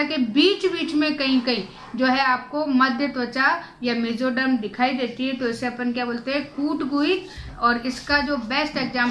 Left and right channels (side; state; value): both; identical; correlation 1.00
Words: के बीच बीच में कहीं कहीं जो है आपको मध्य त्वचा या मेसोडर्म दिखाई देती है, तो इसे अपन क्या बोलते हैं, कूटगुहिक। और इसका जो बेस्ट